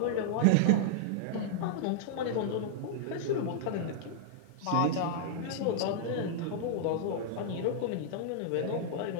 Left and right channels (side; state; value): both; different; correlation -0.01